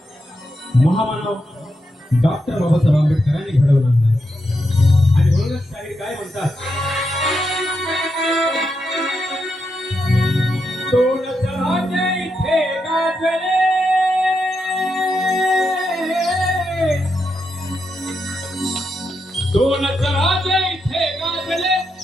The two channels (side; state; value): both; normal; correlation 0.84